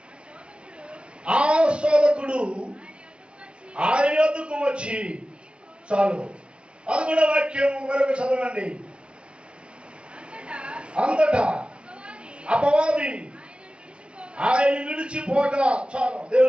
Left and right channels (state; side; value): late; left; 0.058 ms